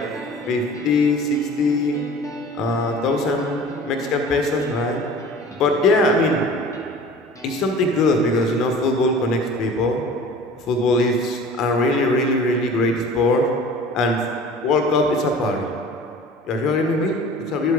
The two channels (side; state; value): both; normal; correlation 0.43